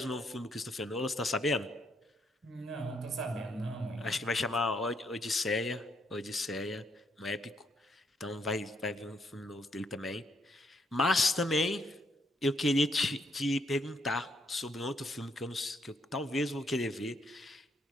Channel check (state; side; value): normal; both; correlation 0.73